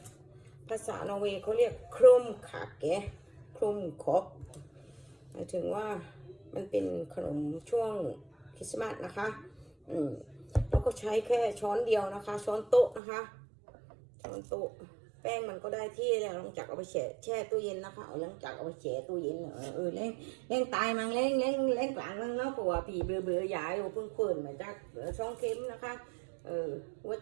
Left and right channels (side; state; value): left; drops out; at 13.0 s